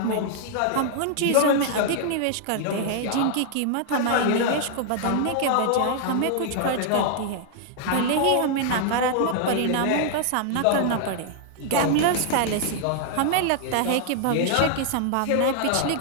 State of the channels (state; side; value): different; both; correlation -0.01